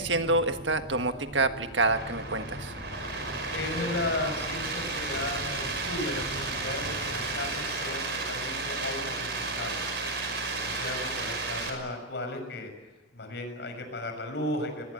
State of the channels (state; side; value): normal; both; correlation -0.07